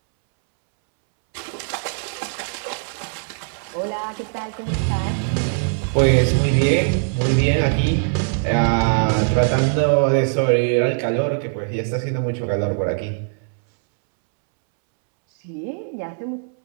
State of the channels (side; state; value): left; silent; 65 dB below the other